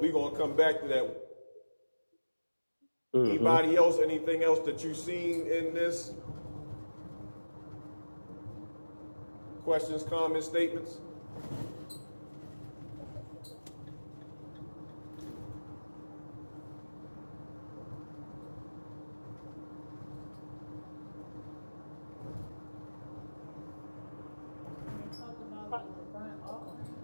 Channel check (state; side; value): inverted; both; correlation -1.00